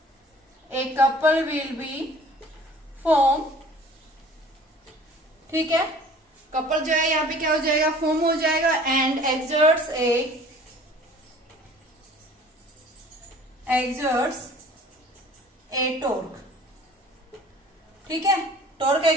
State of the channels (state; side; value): normal; both; correlation 0.49